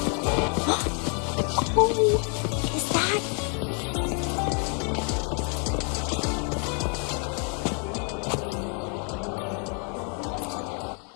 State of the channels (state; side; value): quieter; right; 39.1 dB